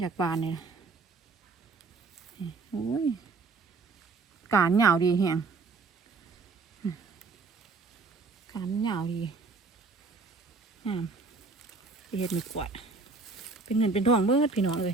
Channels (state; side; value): quieter; left; 4.1 dB